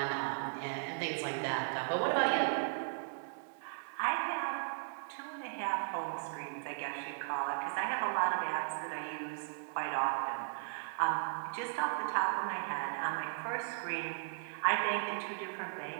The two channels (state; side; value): silent; left; digital silence